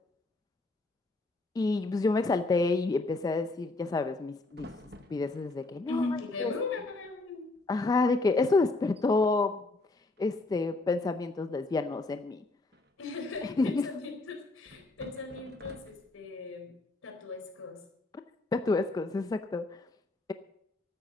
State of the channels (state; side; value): quieter; right; 3.1 dB